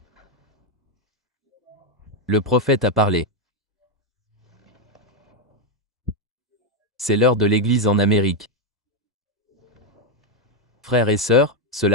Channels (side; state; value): both; normal; correlation 0.03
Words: le prophète a parlé. C'est l'heure de l'Église en Amérique. Frères et sœurs,